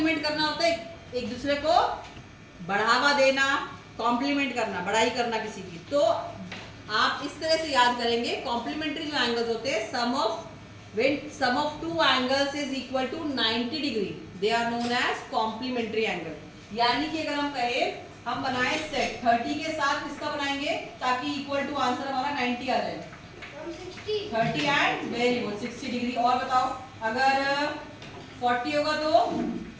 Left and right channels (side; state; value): both; identical; correlation 1.00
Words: करना होता है एक दूसरे को, बढ़ावा देना, कॉम्प्लीमेंट करना, बड़ाई करना किसी की। तो आप इस तरह से याद करेंगे, कॉम्प्लीमेंट्री जो एंगल्स होते हैं, sum of two angles is equal to 90 degree, they are known as complementary angle. यानी कि अगर हम कहें हम बनाए सेट 30 के साथ किसका बनाएंगे ताकि इक्वल टू आंसर हमारा 90 आ जाए, 30 एंड वेरी गुड 60 डिग्री। और बताओ अगर 40 होगा तो